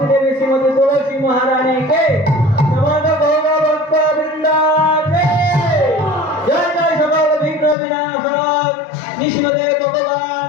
देवी श्रीमती तुलसी महारानी के समस्त गौर भक्त वृंदा के जय जय सकल विघ्न विनाशक नृसिंहदेव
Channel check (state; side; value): drops out; right; at 7.8 s